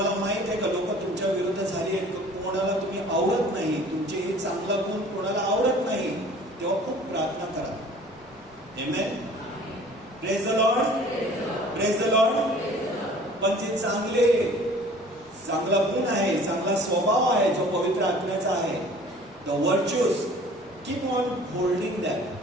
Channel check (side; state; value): both; normal; correlation 0.49